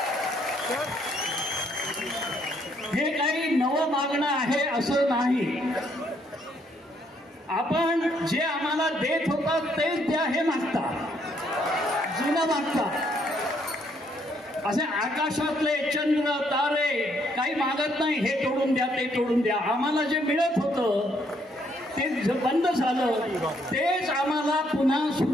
हे काही नवं मागणं आहे असं नाही. आपण जे आम्हाला देत होतात तेच द्या हे मागतात, जुनं मागतात. असे आकाशातले चंद्र तारे काही मागत नाही, हे तोडून द्या ते तोडून द्या. आम्हाला जे मिळत होतं ते बंद झालं, तेच आम्हाला पुन्हा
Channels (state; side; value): normal; both; correlation 0.70